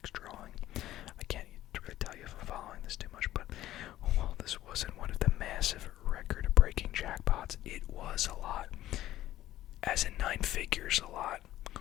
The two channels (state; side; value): quieter; right; 14.1 dB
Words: drawing. I can't really tell you if I'm following this too much, but while this wasn't one of the massive record-breaking jackpots, it was a lot. As in 9 figures, a lot.